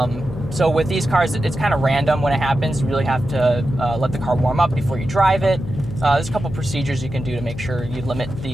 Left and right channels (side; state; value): left; noise; hum, 11 dB below the sound